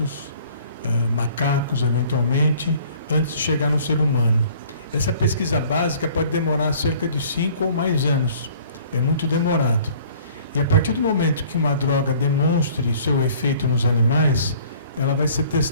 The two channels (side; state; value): both; inverted; correlation -0.53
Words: macacos, eventualmente, antes de chegar no ser humano. Essa pesquisa básica pode demorar cerca de 5 ou mais anos. É muito demorado. E a partir do momento que uma droga demonstre seu efeito nos animais, ela vai ser